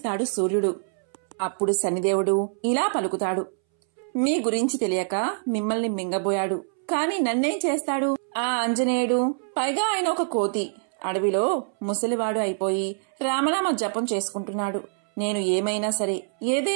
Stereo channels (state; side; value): silent; left; 62 dB below the other